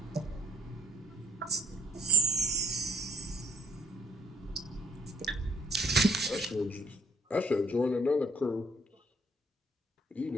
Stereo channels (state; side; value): normal; both; correlation 0.65